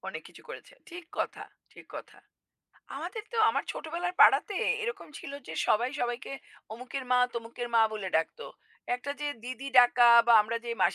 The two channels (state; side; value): identical; both; correlation 1.00